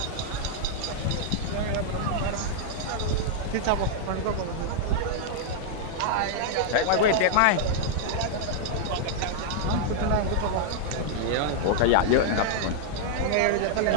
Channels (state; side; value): different; both; correlation -0.01